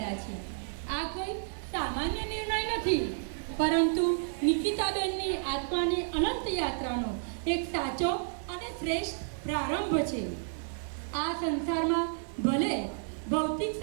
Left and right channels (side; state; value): left; silent; digital silence